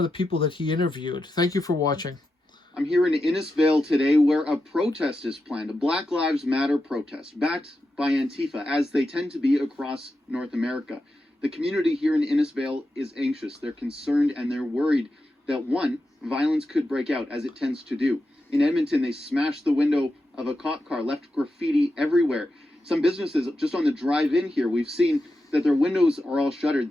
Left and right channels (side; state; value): both; normal; correlation 0.89